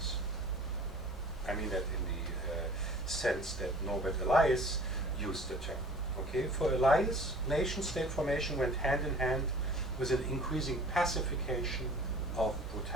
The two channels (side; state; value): both; normal; correlation 0.47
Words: I mean that in the sense that Norbert Elias used the term. Okay, for Elias, nation-state formation went hand in hand with an increasing pacification of